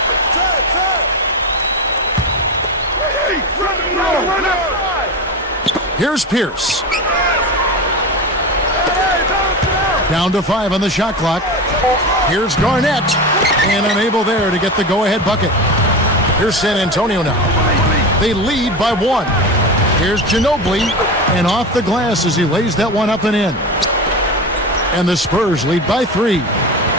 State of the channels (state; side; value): normal; both; correlation 0.23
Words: Here's Pierce. Down to 5 on the shot clock. Here's Garnett. And unable there to get the go-ahead bucket. Here's San Antonio now. They lead by 1. Here's Ginobili. And off the glass as he lays that one up and in. And the Spurs lead by 3.